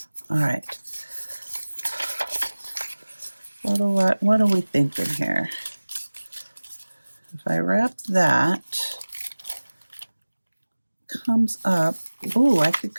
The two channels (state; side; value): inverted; both; correlation -1.00